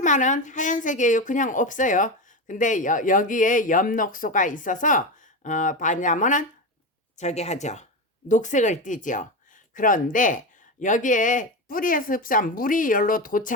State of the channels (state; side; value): normal; both; correlation 0.18